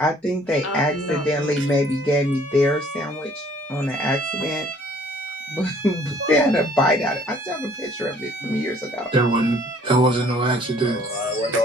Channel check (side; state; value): both; normal; correlation 0.58